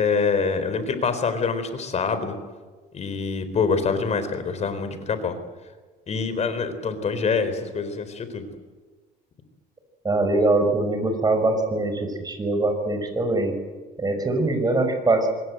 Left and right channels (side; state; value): both; normal; correlation 0.46